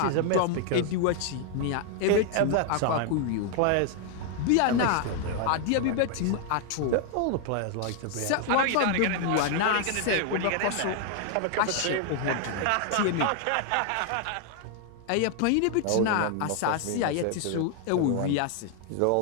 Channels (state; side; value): different; both; correlation 0.00